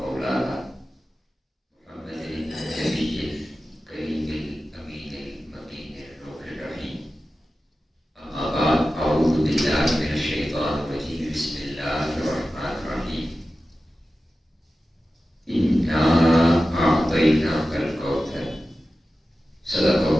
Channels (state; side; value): normal; both; correlation 0.94